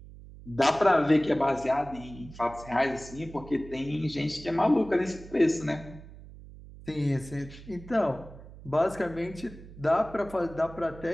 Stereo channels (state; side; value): noise; right; hum, 17 dB below the sound